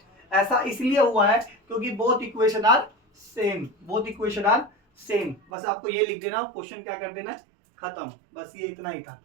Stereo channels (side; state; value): left; drops out; at 5.4 s